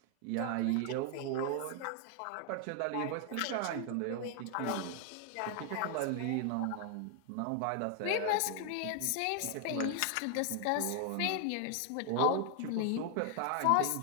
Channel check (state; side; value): different; both; correlation 0.00